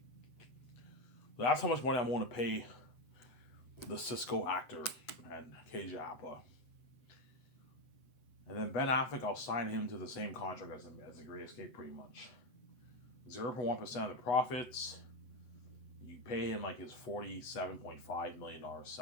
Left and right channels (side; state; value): right; late; 8.1 ms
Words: So that's how much money I'm willing to pay the Cisco actor and KJ Apa. And then Ben Affleck, I'll sign him to the same contract as the Great Escape, pretty much. 0.1% of the profits. You pay him like his $47.5 million